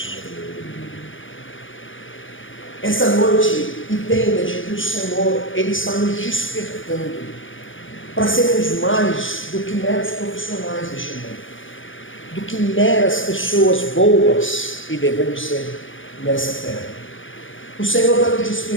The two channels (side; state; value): right; late; 0.57 ms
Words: Essa noite, entenda de que o Senhor, Ele está nos despertando para sermos mais do que meros profissionais deste mundo, do que meras pessoas boas, e devemos ser nessa terra. O Senhor está nos